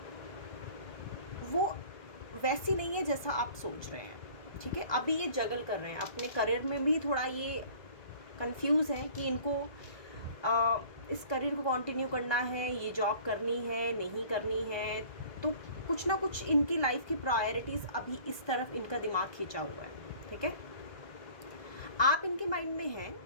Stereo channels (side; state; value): right; late; 1.2 ms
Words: वो वैसी नहीं है जैसा आप सोच रहे हैं, ठीक है। अभी ये जगल कर रहे हैं अपने करियर में भी, थोड़ा ये कंफ्यूज है कि इनको इस करियर को कंटिन्यू करना है, ये जॉब करनी है, नहीं करनी है। तो कुछ ना कुछ इनकी लाइफ की प्रायोरिटीज़ अभी इस तरफ इनका दिमाग खींचा हुआ है, ठीक है। आप इनके माइंड में हैं